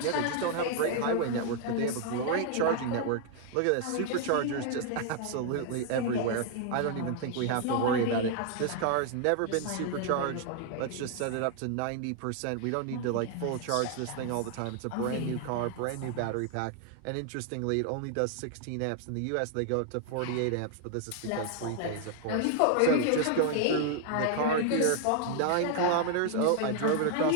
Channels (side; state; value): both; different; correlation 0.00